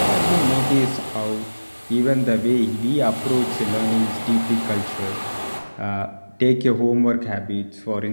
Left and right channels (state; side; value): inverted; both; correlation -1.00